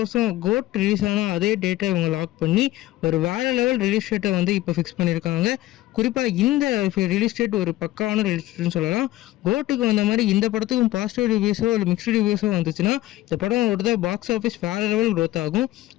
கோட் ரிலீஸ் ஆன அதே டேட்டை இவங்க லாக் பண்ணி ஒரு வேற லெவல் ரிலீஸ் டேட்டை வந்து இப்போ ஃபிக்ஸ் பண்ணியிருக்காங்க. குறிப்பாக இந்த ரிலீஸ் டேட் ஒரு பக்காவான ரிலீஸ் டேட்னு சொல்லலாம். கோட்டுக்கு வந்த மாதிரி இந்த படத்துக்கும் பாசிட்டிவ் ரிவ்யூஸோ இல்லை மிக்ஸ்டு ரிவ்யூஸோ வந்துச்சுன்னா இந்த படம் ஒரு பாக்ஸ் ஆஃபீஸ் வேற லெவல் க்ரோத் ஆகும்.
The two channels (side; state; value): right; quieter; 16.3 dB